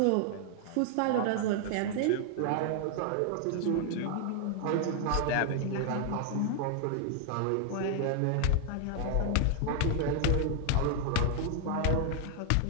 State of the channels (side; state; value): both; different; correlation 0.00